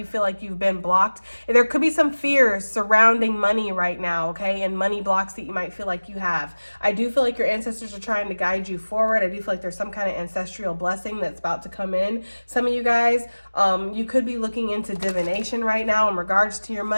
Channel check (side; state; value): both; inverted; correlation -1.00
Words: feel like you've been blocked. There could be some fears surrounding money right now, okay? And money blocks that you might feel like you have. I do feel like your ancestors are trying to guide you forward. I do feel like there's some kind of ancestral blessing that's about to come in. Some of you guys, you could be looking into divination right now in regards to your